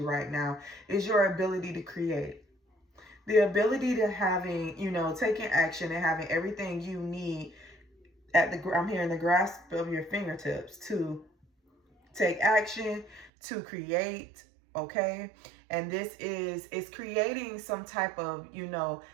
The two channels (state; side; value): drops out; left; at 13.3 s